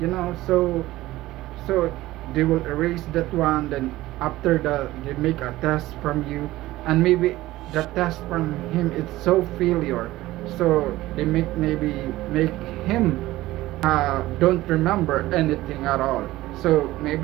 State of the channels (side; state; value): left; quieter; 17.0 dB